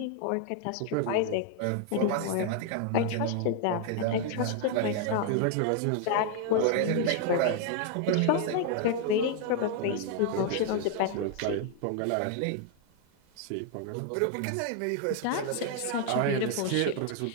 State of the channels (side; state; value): both; different; correlation 0.00